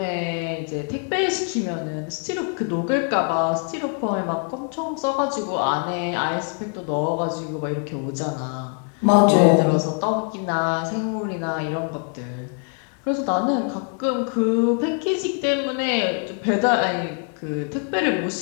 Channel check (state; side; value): quieter; right; 40.0 dB